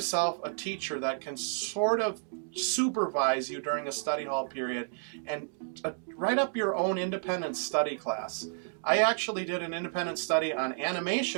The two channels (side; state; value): left; silent; digital silence